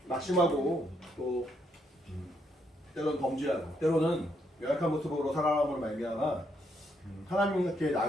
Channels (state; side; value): normal; both; correlation 0.75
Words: 낙심하고 또 때로는 범죄하고 때로는 연약한 모습으로 살아감으로 말미암아 하나님께